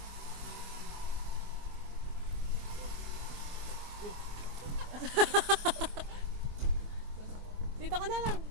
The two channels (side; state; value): left; late; 24 ms